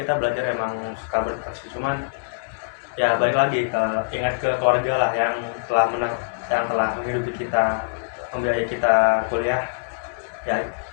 belajar emang suka burnout sih, cuman ya balik lagi ingat ke keluarga lah yang telah yang telah menghidupi kita, membiayai kita kuliah, ya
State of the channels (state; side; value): quieter; right; 34.8 dB